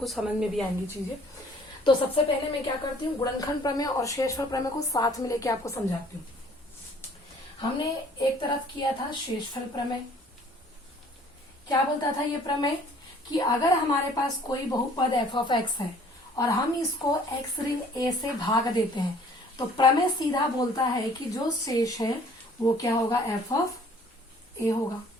समझ में भी आएंगी चीजें। तो सबसे पहले मैं क्या करती हूँ, गुणनखंड प्रमेय और शेषफल प्रमेय को साथ में लेके आपको समझाती हूँ। हमने एक तरफ किया था शेषफल प्रमेय। क्या बोलता था ये प्रमेय कि अगर हमारे पास कोई बहुपद एफ ऑफ एक्स है और हम इसको एक्स ऋण ए से भाग देते हैं तो प्रमेय सीधा बोलता है कि जो शेष है वो क्या होगा, एफ ऑफ ए होगा।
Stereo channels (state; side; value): normal; both; correlation 0.55